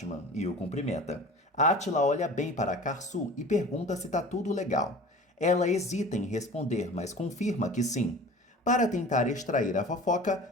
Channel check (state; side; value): normal; both; correlation 0.40